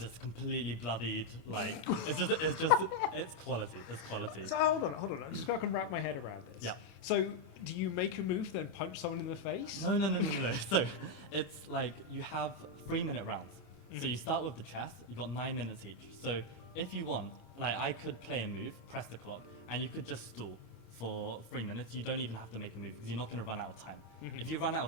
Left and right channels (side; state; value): right; late; 27 ms